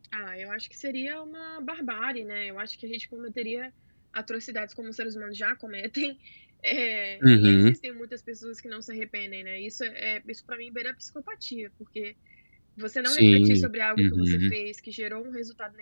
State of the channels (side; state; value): both; inverted; correlation -1.00